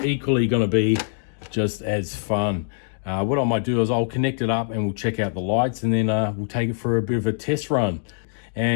equally going to be just as fun. What I might do is I'll connect it up and we'll check out the lights, and then we'll take it for a bit of a test run.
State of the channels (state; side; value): silent; right; digital silence